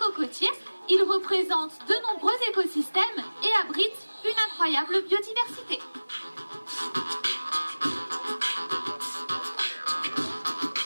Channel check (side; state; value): both; inverted; correlation -1.00